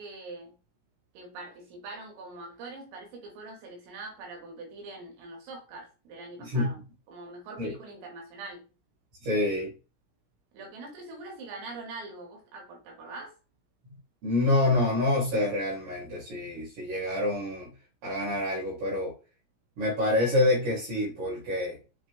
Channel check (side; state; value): left; late; 17 ms